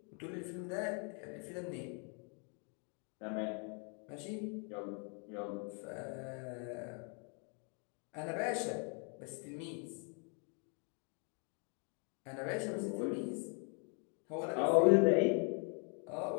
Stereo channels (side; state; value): right; quieter; 39.0 dB